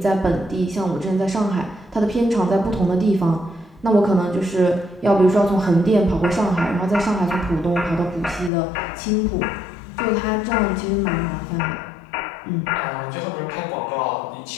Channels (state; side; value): drops out; right; at 8.5 s